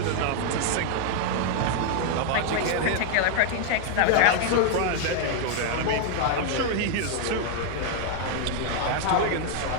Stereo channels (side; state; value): both; different; correlation 0.00